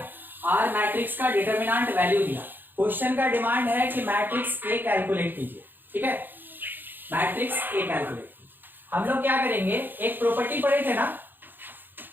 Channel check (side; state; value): left; late; 0.093 ms